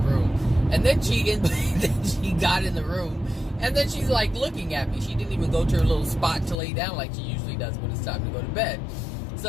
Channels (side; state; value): right; drops out; at 6.6 s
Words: And then she got in the room. And then she's like looking at me. She didn't even go to her little spot to lay down like she usually does when it's time to go to bed.